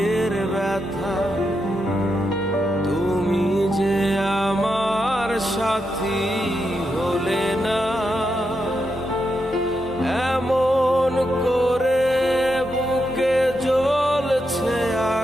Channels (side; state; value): both; normal; correlation 0.84